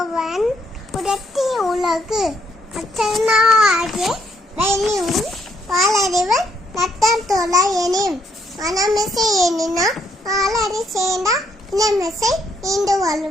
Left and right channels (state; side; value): normal; both; correlation 0.73